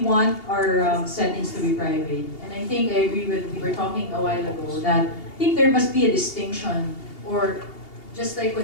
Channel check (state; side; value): late; right; 2.8 ms